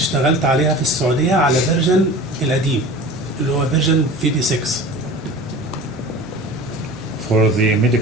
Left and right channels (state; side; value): normal; both; correlation 0.38